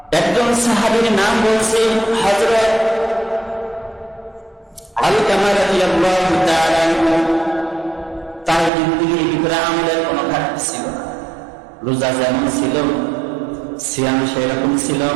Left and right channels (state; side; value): drops out; left; at 8.7 s